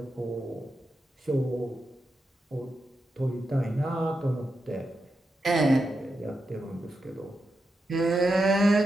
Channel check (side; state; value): both; normal; correlation 0.87